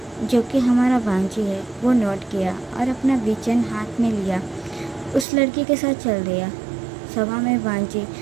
जो कि हमारा वांजी है, वो नोट किया और अपना विचन हाथ में लिया उस लड़की के साथ चल दिया। सभा में वांजी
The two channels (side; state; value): left; drops out; at 5.2 s